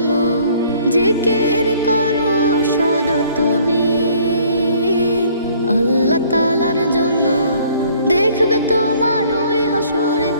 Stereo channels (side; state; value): both; inverted; correlation -0.59